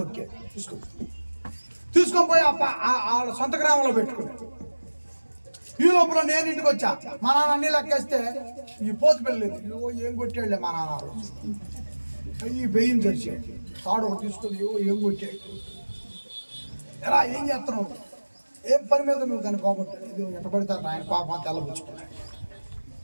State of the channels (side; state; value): both; inverted; correlation -1.00